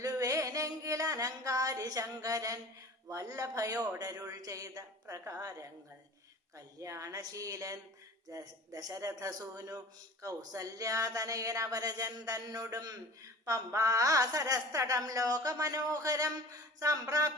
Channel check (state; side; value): normal; both; correlation 0.41